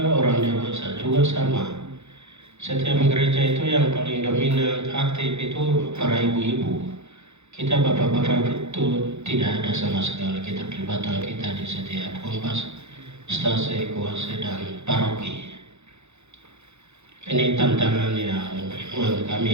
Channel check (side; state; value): left; late; 0.81 ms